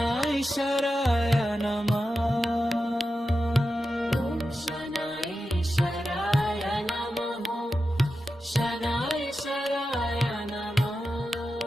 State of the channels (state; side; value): normal; both; correlation 0.91